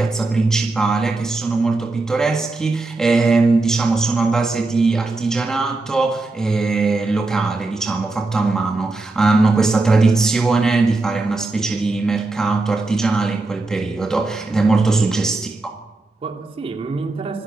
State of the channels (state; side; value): quieter; left; 3.3 dB